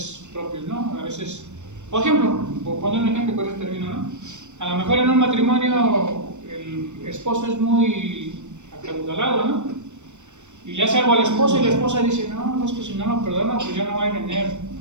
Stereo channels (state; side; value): late; left; 0.84 ms